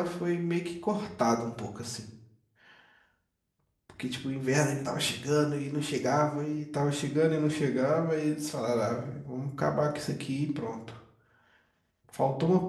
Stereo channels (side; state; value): both; identical; correlation 1.00